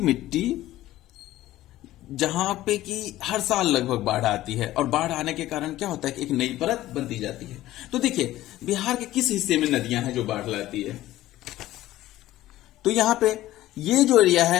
मिट्टी जहां पे कि हर साल लगभग बाढ़ आती है, और बाढ़ आने के कारण क्या होता है कि एक नई परत बनती जाती है। तो देखिए बिहार के किस हिस्से में नदियां हैं जो बाढ़ लाती है, तो यहां पे ये जो एरिया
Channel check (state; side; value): quieter; right; 15.3 dB